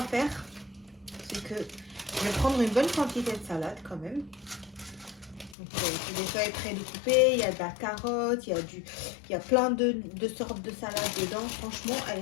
faire, c'est que je vais prendre une bonne quantité de salade quand même. Donc, c'est des feuilles pré-découpées, il y a de la carotte, il y a plein de sortes de salades dedans. Franchement, elle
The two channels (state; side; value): drops out; right; at 5.6 s